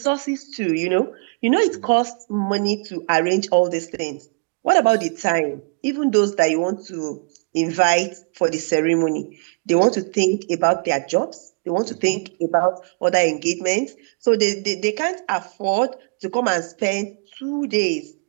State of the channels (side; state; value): left; quieter; 36.9 dB